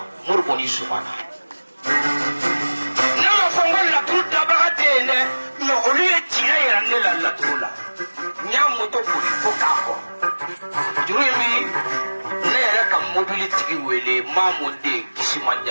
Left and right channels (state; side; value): inverted; both; correlation -1.00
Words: murgoni sumana nama fongo la tuta bagatene no oliye tira nela la turula nyamu to kuli fokako jurimi mobility wele mamude